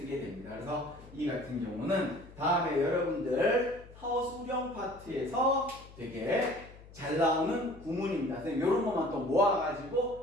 됩니다. 그래서 이 같은 경우는 다음에 여러분들 서술형 파트에서 되게 잘 나오는 구문입니다. 이런 것만 또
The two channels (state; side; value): noise; left; hum, 19 dB below the sound